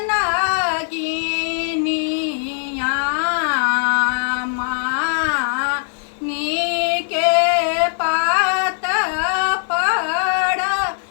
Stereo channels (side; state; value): right; silent; digital silence